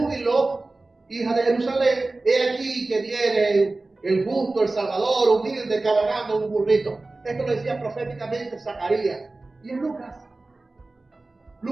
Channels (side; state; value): left; quieter; 3.2 dB